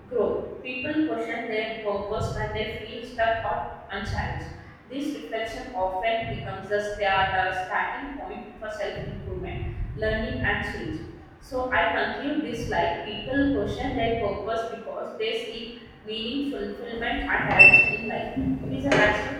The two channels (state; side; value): identical; both; correlation 1.00